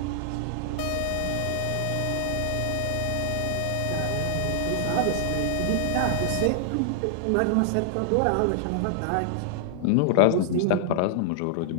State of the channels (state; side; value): different; both; correlation 0.00